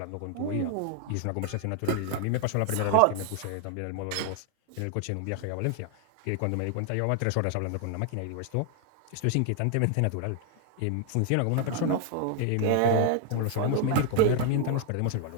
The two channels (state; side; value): different; both; correlation 0.00